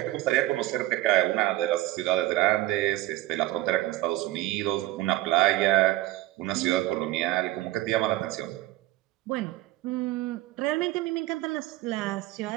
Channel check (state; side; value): quieter; left; 16.8 dB